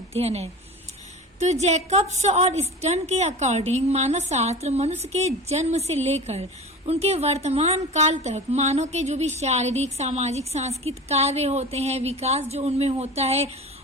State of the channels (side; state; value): both; normal; correlation 0.34